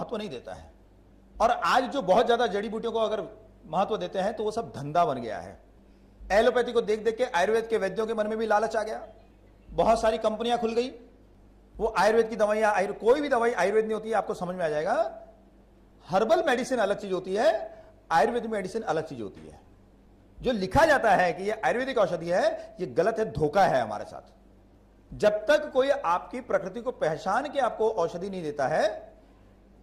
नहीं देता है। और आज जो बहुत ज्यादा जड़ी बूटियों को अगर महत्व देते हैं तो वो सब धंधा बन गया है। एलोपैथी को देख देख के आयुर्वेद के वैद्यों के मन में भी लालच आ गया। बहुत सारी कंपनियां खुल गई, वो आयुर्वेद की दवाइयां, कोई भी दवाई आयुर्वेद नहीं होती है, आपको समझ में आ जाएगा। हर्बल मेडिसिन अलग चीज होती है, आयुर्वेदिक मेडिसिन अलग चीज होती है। जो लिखा जाता है कि ये आयुर्वेदिक औषधि है, ये गलत है, धोखा है हमारे साथ। जब तक कोई आपकी प्रकृति को पहचान के आपको औषधि नहीं देता है,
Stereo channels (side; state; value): both; identical; correlation 1.00